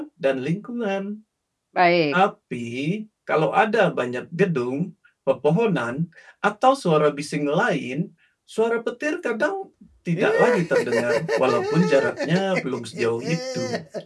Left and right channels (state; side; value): identical; both; correlation 1.00